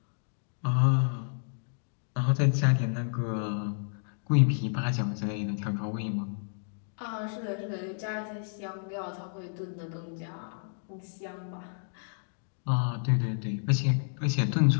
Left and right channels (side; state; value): right; silent; digital silence